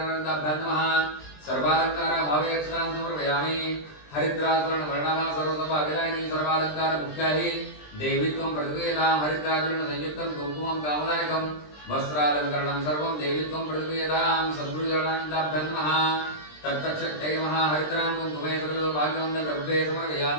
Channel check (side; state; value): right; late; 20 ms